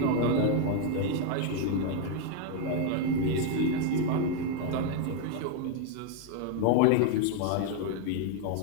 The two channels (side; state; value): both; different; correlation 0.01